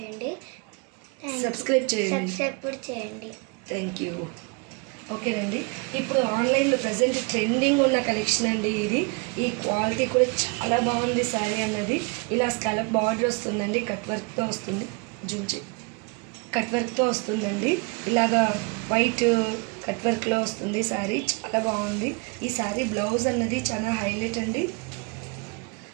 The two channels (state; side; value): quieter; left; 32.3 dB